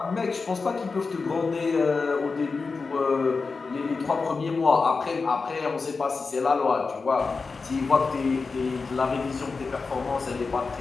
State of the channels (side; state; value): right; quieter; 4.4 dB